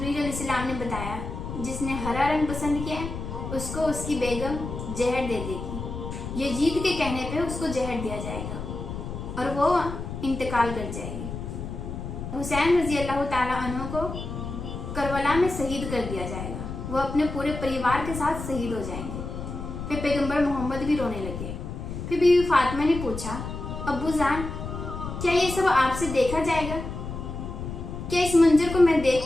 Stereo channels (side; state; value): left; noise; rumble, 7 dB below the sound